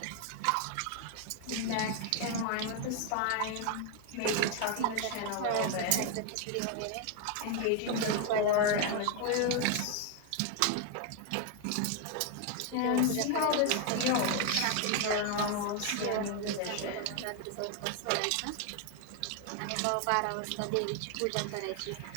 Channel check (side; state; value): both; different; correlation 0.01